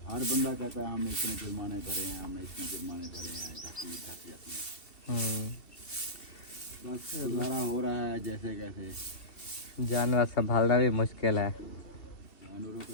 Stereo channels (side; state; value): right; late; 2.7 ms